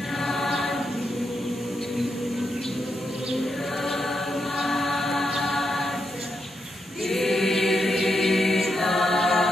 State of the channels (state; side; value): normal; both; correlation 0.83